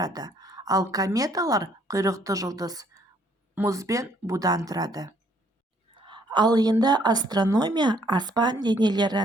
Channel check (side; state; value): both; normal; correlation 0.65